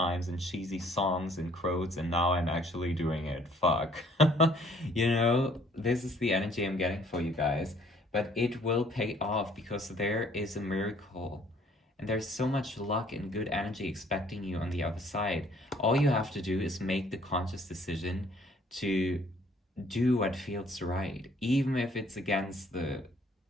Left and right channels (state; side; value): normal; both; correlation 0.60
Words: in cheesy songs and quotes, and now I'm actually doing it. Fuck. You know, this is the energy I'm getting for you guys. But it will pay off because there is a miracle. And there's so much luck and good energy expecting you on the other side. All you have to do is make the conscious decision to do what feels right, even if it's against the